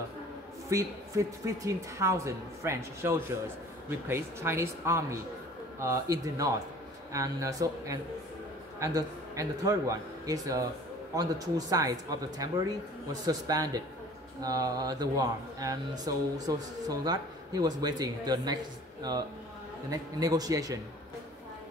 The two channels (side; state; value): both; normal; correlation 0.48